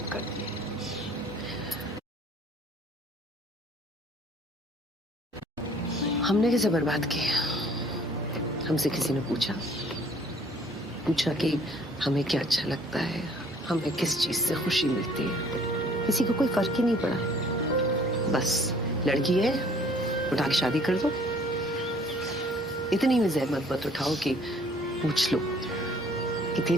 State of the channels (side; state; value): both; normal; correlation 0.57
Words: कर दी। हमने कैसे बर्बाद किया? हमसे किसी ने पूछा कि हमें क्या अच्छा लगता है, हमें किस चीज से खुशी मिलती है? किसी को कोई फर्क ही नहीं पड़ा। बस लड़की है, उठा के शादी कर दो। इतनी भी जहमत मत उठाओ कि पूछ लो कि